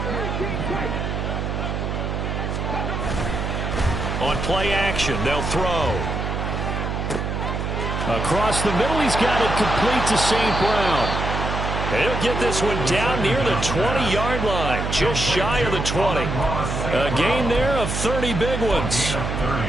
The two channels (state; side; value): noise; right; hum, 2 dB below the sound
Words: On play action, they'll throw. Across the middle, he's got it complete to St. Brown. He'll get this one down near the 20-yard line, just shy of the 20. A gain there of 30 big ones.